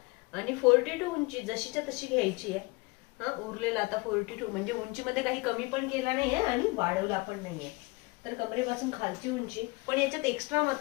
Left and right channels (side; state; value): right; quieter; 26.2 dB